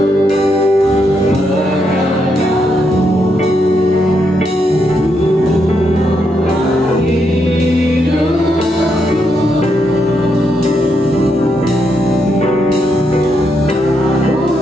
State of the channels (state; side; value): normal; both; correlation 0.80